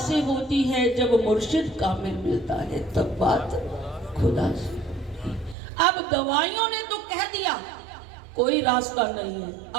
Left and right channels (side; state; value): left; drops out; at 5.6 s